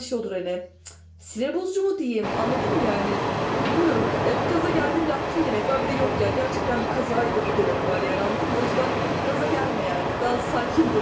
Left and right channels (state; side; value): identical; both; correlation 1.00